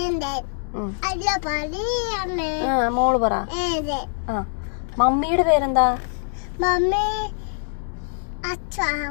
മോള് പറ. മമ്മിയുടെ പേരെന്താ?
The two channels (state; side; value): silent; right; 62 dB below the other